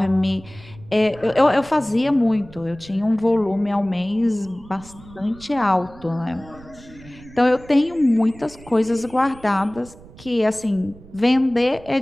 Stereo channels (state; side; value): noise; right; rumble, 21 dB below the sound